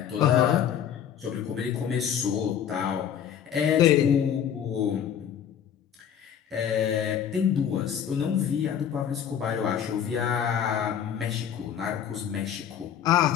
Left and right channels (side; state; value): right; quieter; 8.9 dB